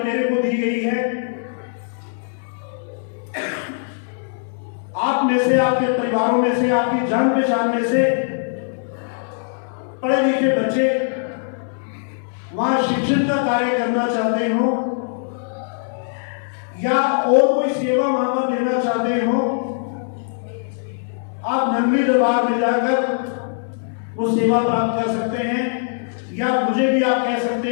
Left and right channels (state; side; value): silent; right; digital silence